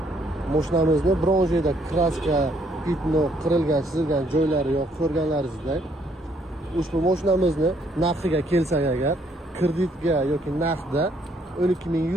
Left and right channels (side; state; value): both; normal; correlation 0.68